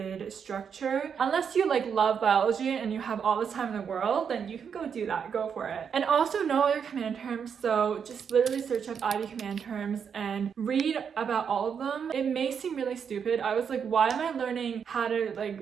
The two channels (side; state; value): left; quieter; 7.0 dB